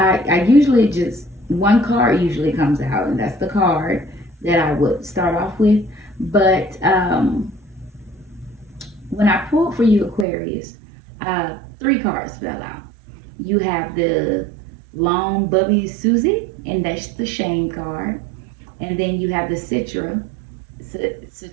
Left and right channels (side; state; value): left; drops out; at 10.2 s